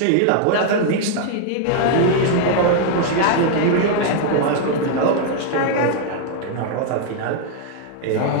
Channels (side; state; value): both; different; correlation 0.00